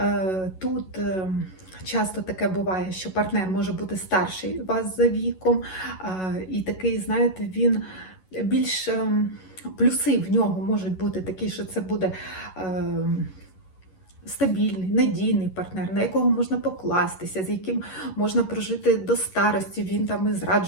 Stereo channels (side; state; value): right; late; 11 ms